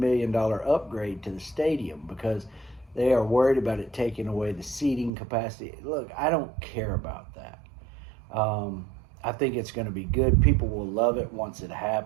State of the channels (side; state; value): left; drops out; at 5.1 s